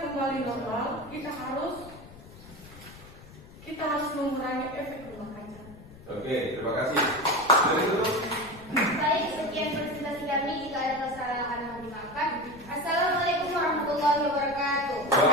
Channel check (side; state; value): left; noise; rumble, 19 dB below the sound